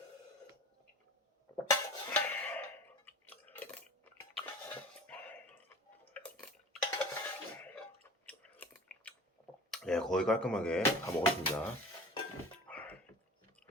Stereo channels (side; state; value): both; normal; correlation 0.39